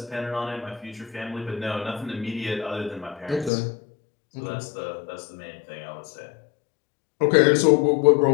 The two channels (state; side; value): drops out; right; at 3.5 s